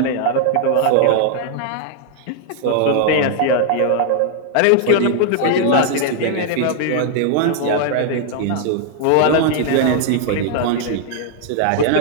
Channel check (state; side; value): different; both; correlation 0.00